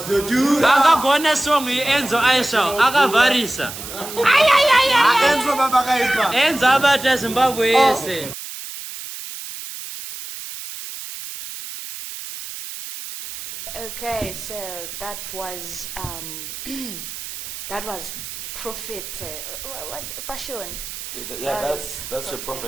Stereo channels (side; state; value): right; noise; hiss, 10 dB below the sound